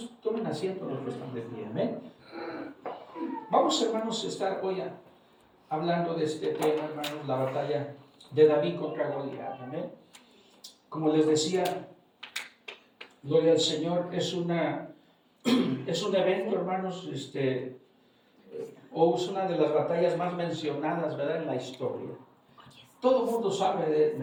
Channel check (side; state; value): both; identical; correlation 1.00